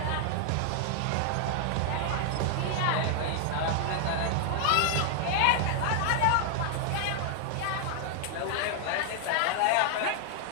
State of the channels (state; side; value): different; both; correlation 0.00